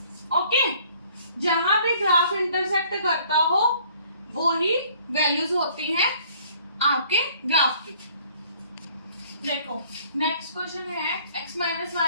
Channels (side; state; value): both; inverted; correlation -0.57